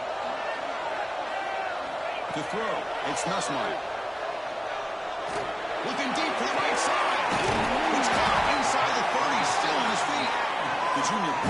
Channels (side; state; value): both; identical; correlation 1.00